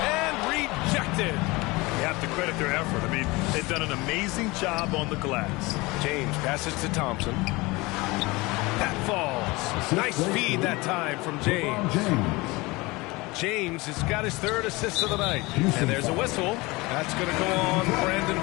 and rejected. You have to credit their effort. I mean, they've done an amazing job on the glass. James passes to Thompson. That falls. Nice feed that time from James. James has got his 3rd assist of the night. And there's a whistle. That's going to go on Brandon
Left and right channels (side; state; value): right; quieter; 23.1 dB